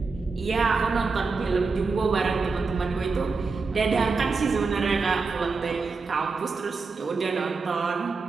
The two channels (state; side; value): quieter; left; 4.4 dB